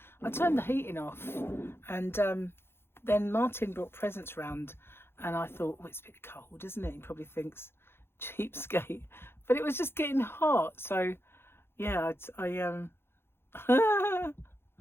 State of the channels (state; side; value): late; right; 0.11 ms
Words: turned the heating off, and then Martin brought presents round, and I thought, well, it's a bit cold, isn't it? He probably thinks cheapskate, but it was just getting hot. So yeah,